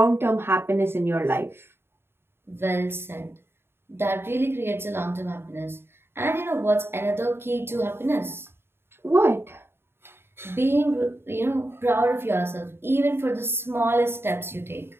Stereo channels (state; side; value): late; left; 0.11 ms